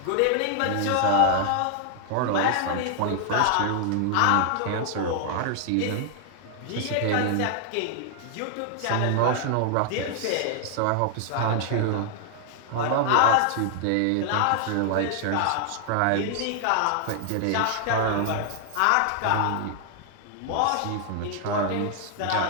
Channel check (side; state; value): both; different; correlation 0.00